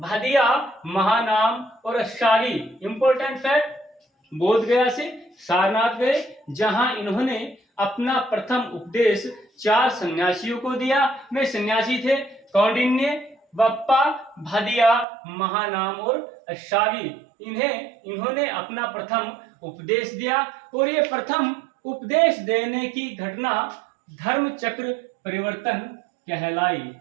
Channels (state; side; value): drops out; left; at 15.1 s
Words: महानाम और अष्टागी। इंपॉर्टेंट फैक्ट, बोध गया से सारनाथ गए जहां इन्होंने अपना प्रथम उपदेश 4 सन्यासियों को दिया। वे सन्यासी थे कौंडिन्य, बप्पा, भादिया, महानाम और अष्टागी। इन्होंने अपना प्रथम उपदेश दिया और ये प्रथम उपदेश देने की घटना धर्म चक्र परिवर्तन कहलाई,